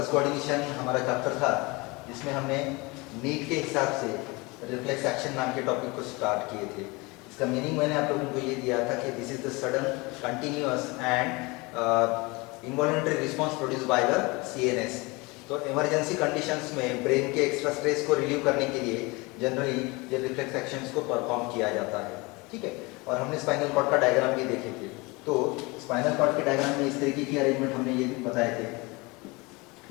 कोऑर्डिनेशन हमारा चैप्टर था जिसमें हमने नीट के हिसाब से रिफ्लेक्स एक्शन नाम के टॉपिक को स्टार्ट किए थे। इसका मीनिंग मैंने आप लोगों को ये दिया था कि this is the sudden continuous and involuntary response produce by the CNS. तो इमरजेंसी कंडीशंस में ब्रेन के एक्स्ट्रा स्ट्रेस को रिलीव करने के लिए जनरली ये रिफ्लेक्स एक्शंस को परफॉर्म किया जाता है। ठीक है, और हमने स्पाइनल कॉर्ड का डायग्राम भी देखे थे। तो स्पाइनल कॉर्ड के डायग्राम में इस तरीके की अरेंजमेंट हमने ये बताए थे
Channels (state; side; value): quieter; right; 25.3 dB